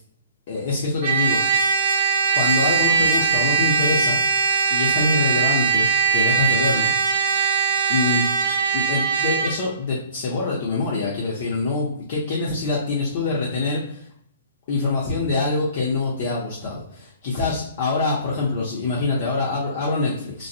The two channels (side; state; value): both; inverted; correlation -0.49